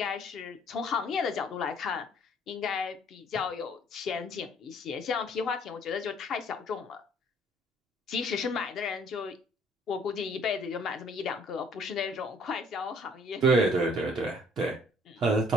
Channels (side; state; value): both; normal; correlation 0.58